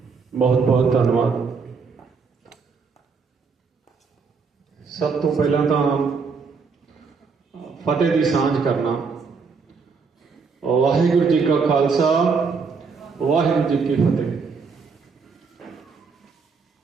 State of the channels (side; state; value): left; quieter; 5.1 dB